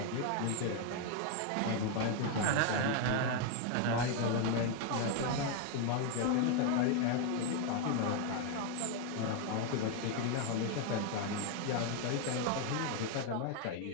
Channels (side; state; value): both; different; correlation 0.01